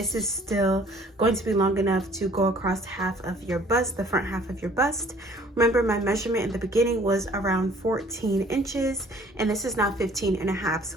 is still going to be long enough to go across half of your bust, the front half of your bust. Remember, my measurement in the beginning was around 14 inches, and this is now 15.5.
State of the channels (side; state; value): both; normal; correlation 0.55